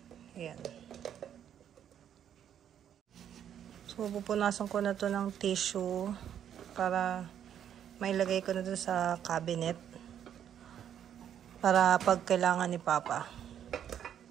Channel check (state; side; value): quieter; left; 9.6 dB